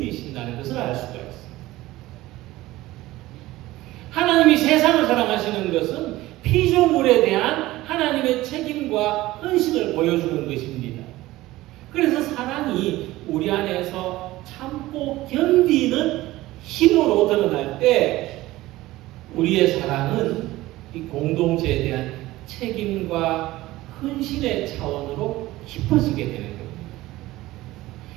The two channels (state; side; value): quieter; left; 17.5 dB